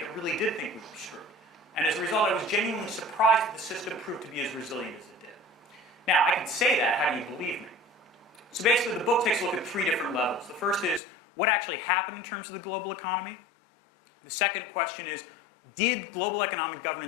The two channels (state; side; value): drops out; right; at 11.0 s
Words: really did think we were screwed. And as a result, I was genuinely surprised that the system proved to be as resilient as it did. Now, I can say that, how do you believe me? So basically, the book takes a look at 3 different levels. The first is, what actually happened in terms of the global economy? The second question is, did global economic